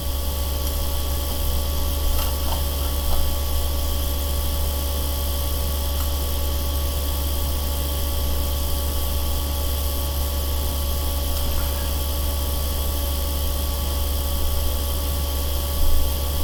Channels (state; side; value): identical; both; correlation 1.00